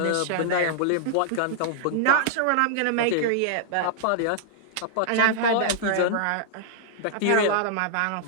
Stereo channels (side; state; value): both; different; correlation -0.01